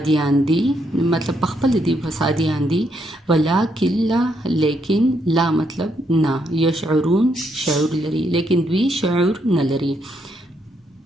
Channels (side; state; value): both; normal; correlation 0.76